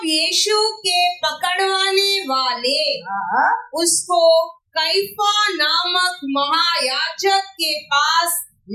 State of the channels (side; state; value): both; identical; correlation 1.00